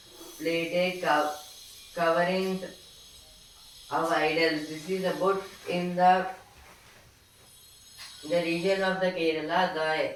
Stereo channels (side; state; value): both; identical; correlation 1.00